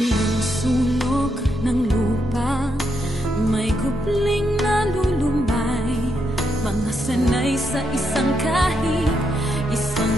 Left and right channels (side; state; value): both; normal; correlation 0.80